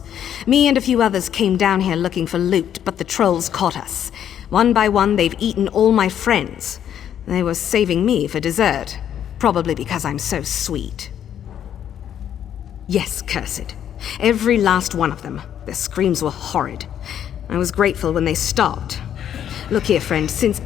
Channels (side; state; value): right; quieter; 9.8 dB